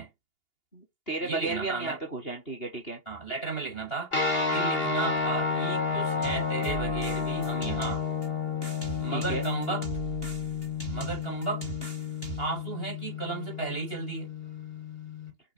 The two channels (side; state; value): right; late; 2.8 ms